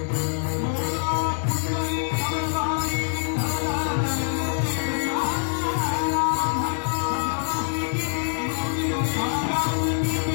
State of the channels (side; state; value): right; silent; digital silence